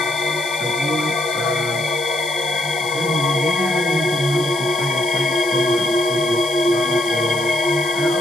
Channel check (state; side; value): noise; left; hiss, 12 dB below the sound